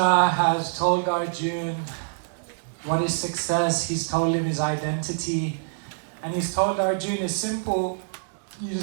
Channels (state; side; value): silent; left; digital silence